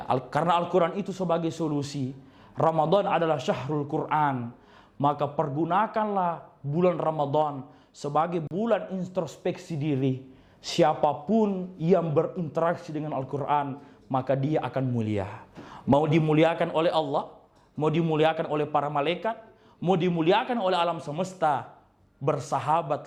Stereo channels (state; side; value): identical; both; correlation 1.00